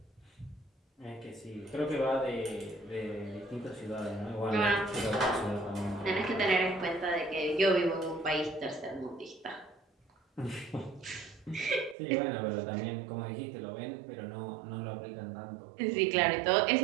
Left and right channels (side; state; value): left; drops out; at 12.0 s